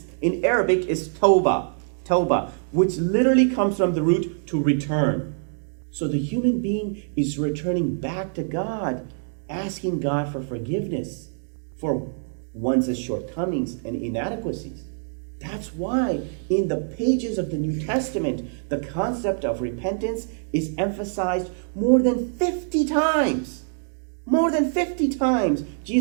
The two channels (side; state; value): left; silent; digital silence